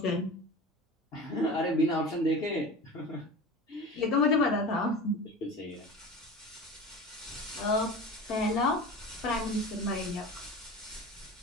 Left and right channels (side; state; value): both; normal; correlation 0.33